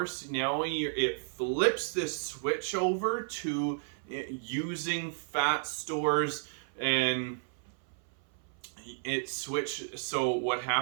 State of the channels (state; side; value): silent; left; 56 dB below the other